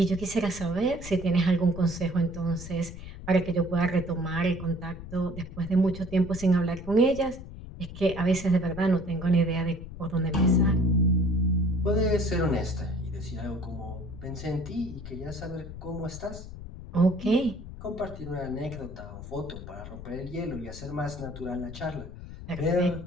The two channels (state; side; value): noise; left; rumble, 12 dB below the sound